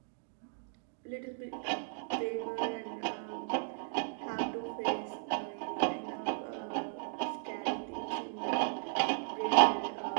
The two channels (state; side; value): silent; left; digital silence